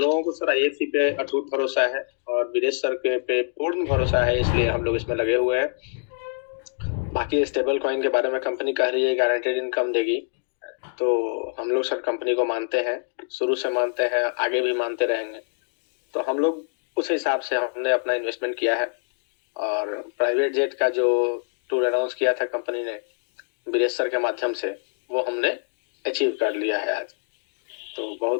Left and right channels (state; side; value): silent; right; digital silence